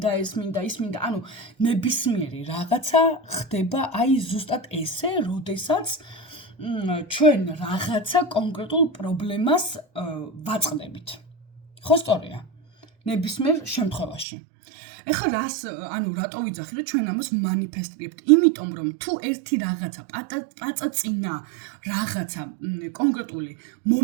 ეს მინდა ის მინდა ანუ ნებისმიერი რაღაცა ხდება აი ზუსტად ესე როდესაც ჩვენ რაღაცა კონკრეტულ პრობლემას ვაწყდებით ხო სწორია ნებისმიერ შემთხვევაში ეხლა რას ანუ რატო ვიძახი რომ ჩვენ ამას მანიფესტირებთ იმიტომ რომ თუ ერთი რაღაცა პაწაწინა რაღაცა კონკრეტული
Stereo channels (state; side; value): drops out; left; at 14.2 s